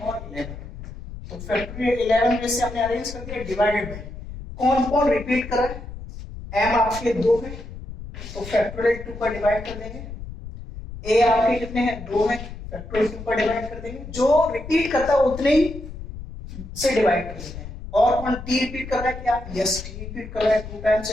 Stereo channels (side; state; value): left; noise; rumble, 11 dB below the sound